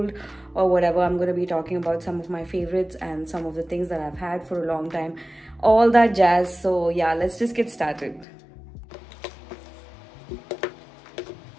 or whatever. I'm going to be talking about some of my favorites and some of the things that I've had for a long time, all that jazz. So yeah, let's just get started.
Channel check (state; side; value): drops out; right; at 8.2 s